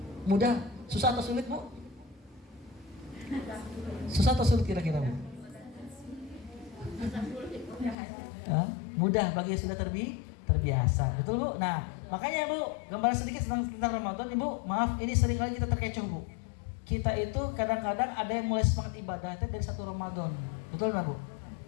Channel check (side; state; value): right; drops out; at 8.0 s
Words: Mudah, susah atau sulit Bu? Susah atau sulit kira-kira Bu? Mudah bagi yang sudah terbiasa. Betul Bu? Nah, makanya Bu, gambaran sedikit tentang Ramadan Ibu. Maaf, ini seringkali kita terkecoh Bu. Kita itu kadang-kadang ada yang mulai semangat ibadahnya dari 1 Ramadan. Betul nggak Bu?